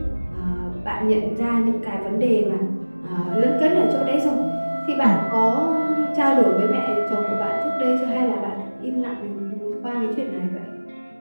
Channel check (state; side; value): inverted; both; correlation -1.00